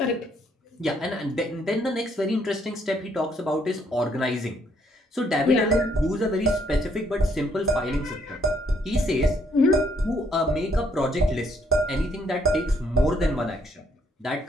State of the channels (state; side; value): normal; both; correlation 0.69